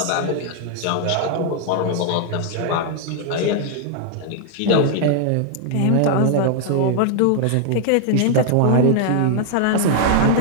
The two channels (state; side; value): different; both; correlation 0.00